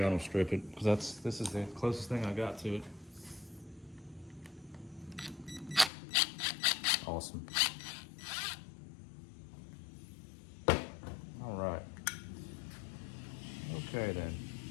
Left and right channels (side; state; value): right; drops out; at 5.9 s